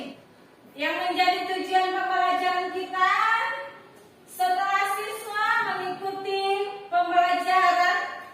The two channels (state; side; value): identical; both; correlation 1.00